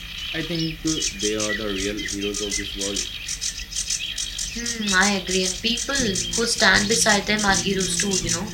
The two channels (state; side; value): identical; both; correlation 1.00